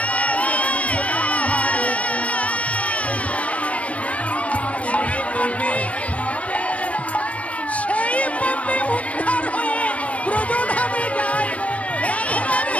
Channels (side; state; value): right; late; 0.065 ms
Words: সেই পাপে উদ্ধার হয়ে ব্রজধামে যায়।